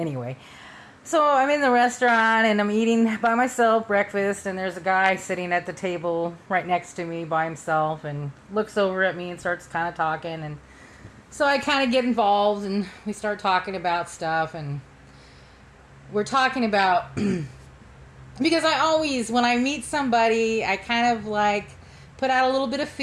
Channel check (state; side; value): identical; both; correlation 1.00